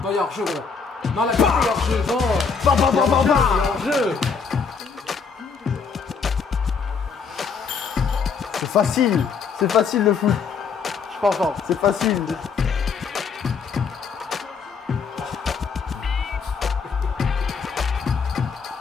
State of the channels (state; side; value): quieter; right; 5.7 dB